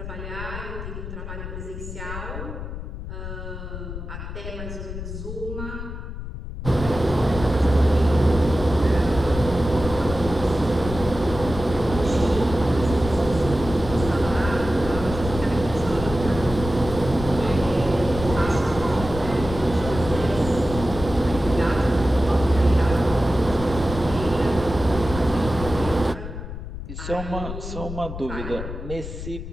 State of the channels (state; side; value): noise; left; rumble, 8 dB below the sound